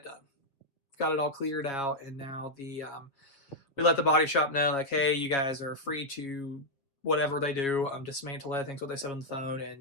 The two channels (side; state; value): right; late; 7.5 ms